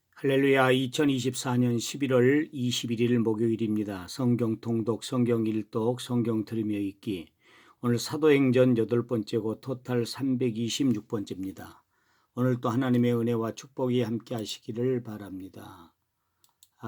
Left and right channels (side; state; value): both; identical; correlation 1.00